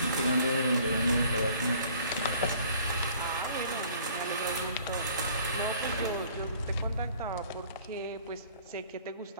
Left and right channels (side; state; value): both; inverted; correlation -0.54